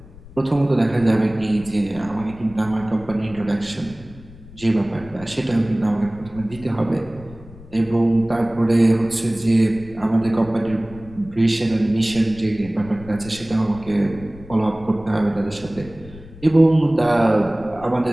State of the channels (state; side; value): noise; left; rumble, 19 dB below the sound